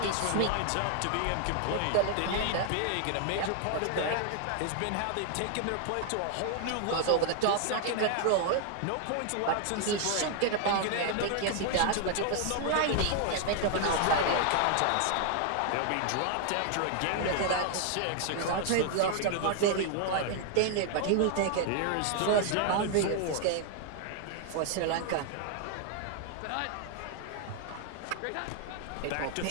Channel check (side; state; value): both; different; correlation 0.00